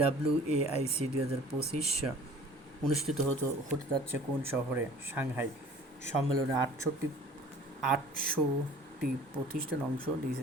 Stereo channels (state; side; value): normal; both; correlation 0.48